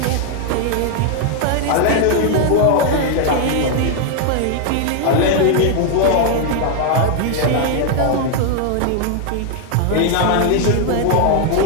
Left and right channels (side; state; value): both; different; correlation 0.00